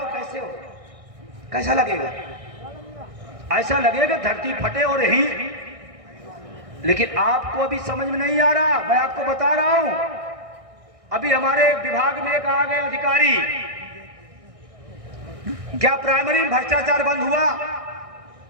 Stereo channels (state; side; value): late; left; 1.6 ms